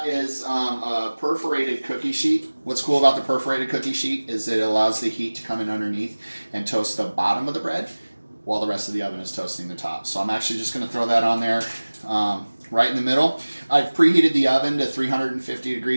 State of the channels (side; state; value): both; inverted; correlation -1.00